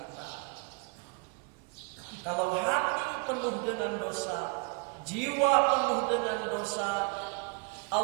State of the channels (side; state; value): left; quieter; 32.5 dB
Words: Kalau hati penuh dengan dosa, jiwa penuh dengan dosa,